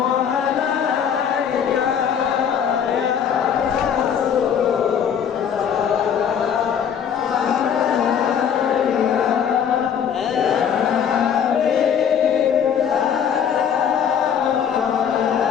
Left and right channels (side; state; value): right; quieter; 8.1 dB